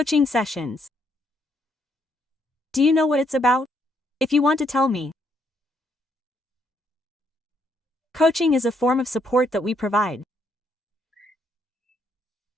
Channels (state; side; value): normal; both; correlation 0.73